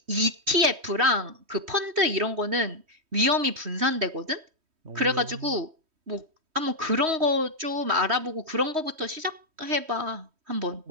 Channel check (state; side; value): late; left; 3.1 ms